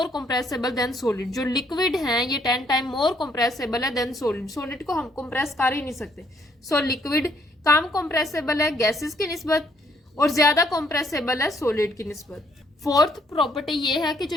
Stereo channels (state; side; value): normal; both; correlation 0.68